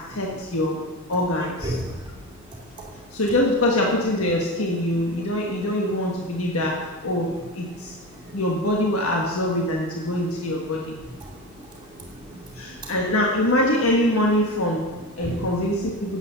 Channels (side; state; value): left; noise; hum, 28 dB below the sound